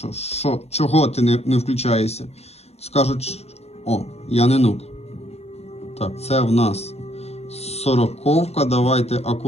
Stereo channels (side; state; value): right; late; 0.31 ms